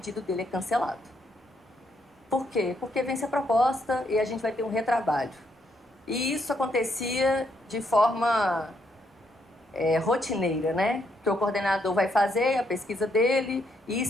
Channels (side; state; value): both; normal; correlation 0.75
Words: dele é cancelado. Por quê? Porque vence a proposta e a gente vai ter um retrabalho. E isso acontecia de forma rotineira, né? Que o coordenador vai fazer a pesquisa dele e